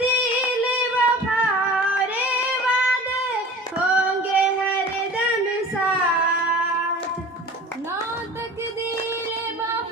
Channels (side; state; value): both; normal; correlation 0.40